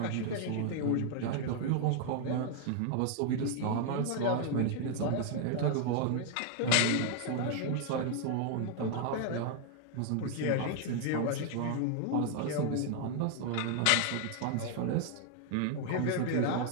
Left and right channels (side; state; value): both; different; correlation 0.00